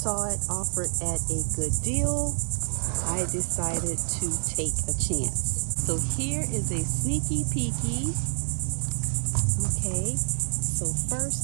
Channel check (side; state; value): left; silent; digital silence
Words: it offered at a good deal, I decided to take a chance. So here is a sneaky peeky. Okay, so